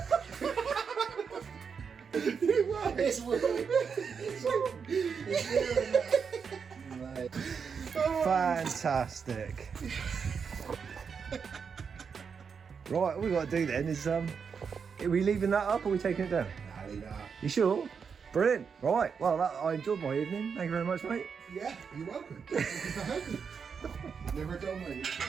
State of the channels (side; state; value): left; quieter; 6.2 dB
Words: It's working. It's doing it. Fantastic. Right, all we got to do then is, are we leaving that up or are we taking it down? Nah, leave that. You sure? Brilliant. Right, well, I enjoyed my evening. Thank you very much, mate. Yeah, you're welcome. Thank you for having me. Never done me.